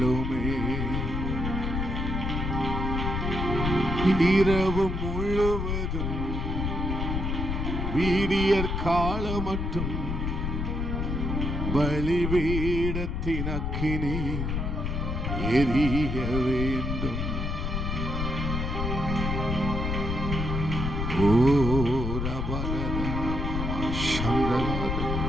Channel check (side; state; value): left; noise; rumble, 1 dB below the sound